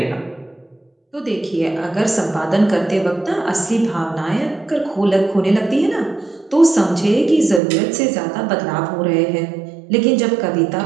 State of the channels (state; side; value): drops out; left; at 7.6 s